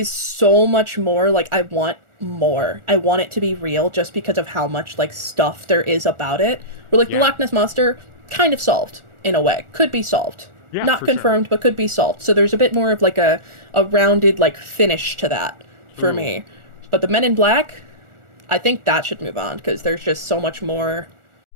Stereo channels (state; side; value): late; left; 1.4 ms